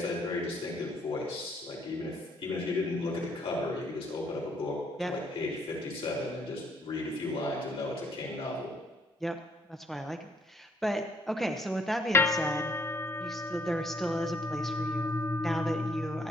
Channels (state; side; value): normal; both; correlation 0.66